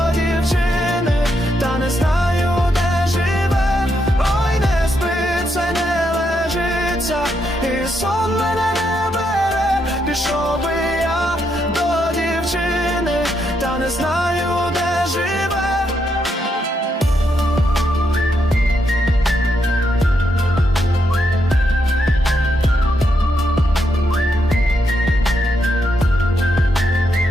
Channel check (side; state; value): both; normal; correlation 0.79